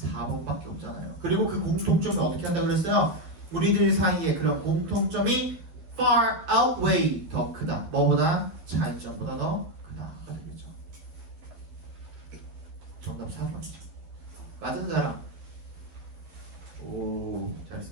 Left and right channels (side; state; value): left; late; 12 ms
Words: 없잖아요. 그리고 그 공통점을 어떻게 한다 그랬어요? 우리들 사이에 그런 공통점이 far outweigh 더 크다. 뭐보다? 차이점보다 더 크다가 되겠죠. 정답 4번이죠. 맞은 사람. 오,